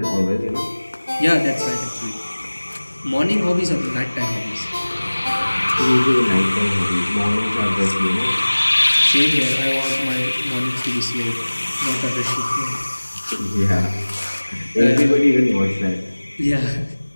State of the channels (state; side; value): inverted; both; correlation -1.00